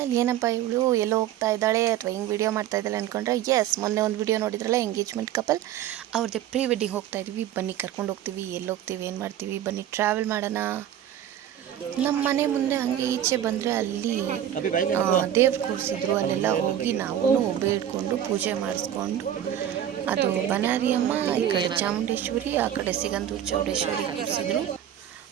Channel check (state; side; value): quieter; left; 10.8 dB